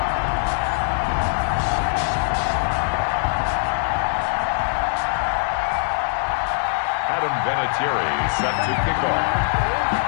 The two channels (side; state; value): right; silent; 64 dB below the other